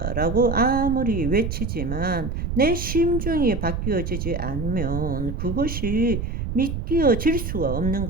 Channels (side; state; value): right; noise; rumble, 4 dB below the sound